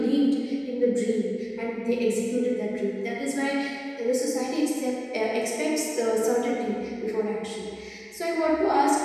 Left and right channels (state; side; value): identical; both; correlation 1.00